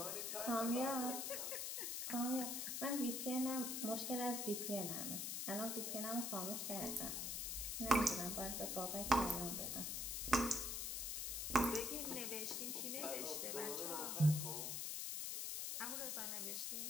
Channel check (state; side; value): noise; left; hiss, 1 dB below the sound